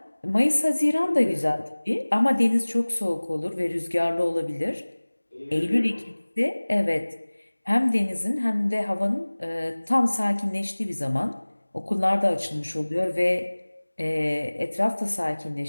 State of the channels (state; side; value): inverted; both; correlation -1.00